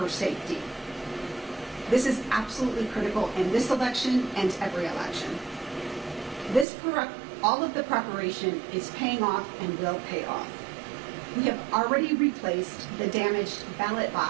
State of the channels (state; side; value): drops out; left; at 6.7 s